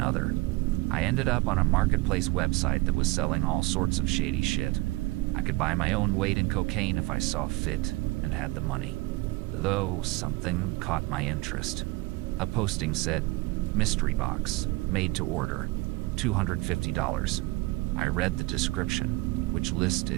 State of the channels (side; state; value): left; quieter; 21.6 dB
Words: I ended up on a marketplace website that was selling all sorts of shady shit. I could buy my own weight in cocaine if I saw fit and had the money. Though something caught my interest. A posting said, "Mystery box, made to order, $250. I read the description, which